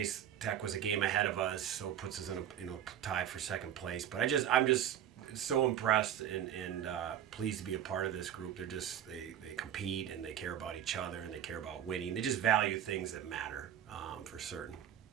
Tech was a game ahead of us, so it puts us in a tie for second place. But I'm just so impressed and pleased to be a part of this group. They compete and they care about each other and they care about winning. They just value things that matter for certain.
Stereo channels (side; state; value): left; quieter; 10.3 dB